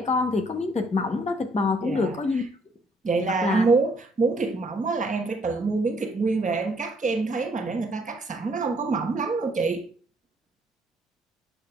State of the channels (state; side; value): normal; both; correlation 0.66